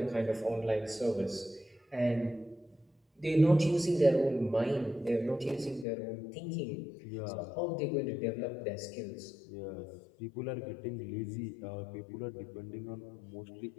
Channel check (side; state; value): right; drops out; at 5.9 s